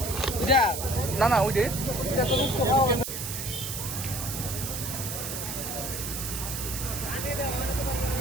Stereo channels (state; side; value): noise; right; hiss, 5 dB below the sound